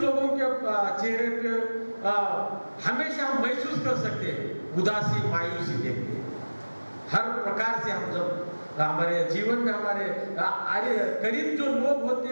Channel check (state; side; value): inverted; both; correlation -1.00